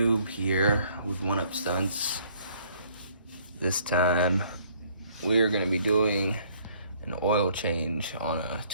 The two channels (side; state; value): both; inverted; correlation -0.61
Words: here with One Up Stunts. This time we're going to be doing an oil change on a